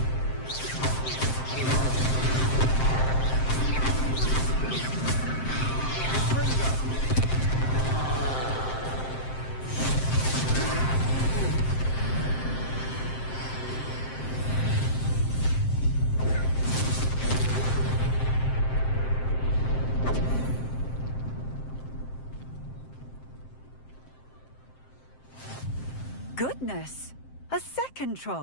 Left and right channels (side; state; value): right; late; 7.6 ms